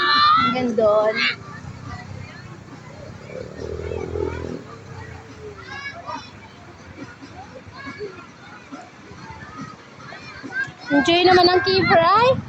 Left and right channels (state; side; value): identical; both; correlation 1.00